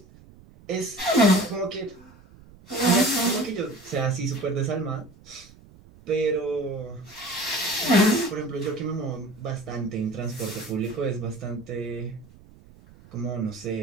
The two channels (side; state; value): right; noise; rumble, 23 dB below the sound